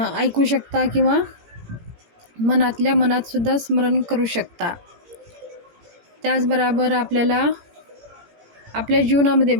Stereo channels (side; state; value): left; late; 17 ms